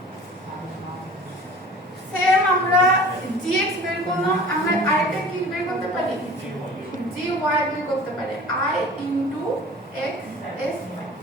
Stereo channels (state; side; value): normal; both; correlation 0.44